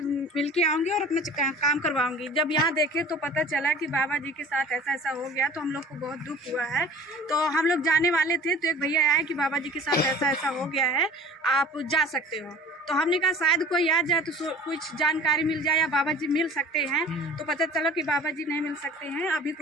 मिल के आऊंगी और अपना काम करवाऊंगी। जब यहाँ देखे तो पता चला कि बाबा जी के साथ ऐसा ऐसा हो गया, तो हम लोग को बहुत हुआ है। तो हम लोग जाने वाले थे तो एक भैया आए कि बाबा जी के साथ ऐसा ऐसा हो गया है, आप जा सकते हो। तो हमने कहा शायद कोई आ जाए तो कुछ जानकारी मिल जाए या बाबा जी मिल सकते हैं। तो पता चला कि बाबा जी नहीं मिल सकते हैं, अभी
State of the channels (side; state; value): both; normal; correlation 0.44